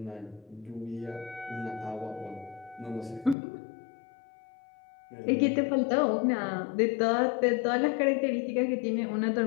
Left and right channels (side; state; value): right; drops out; at 3.4 s